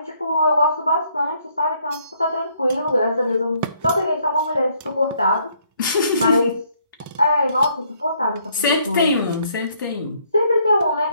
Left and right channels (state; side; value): inverted; both; correlation -0.68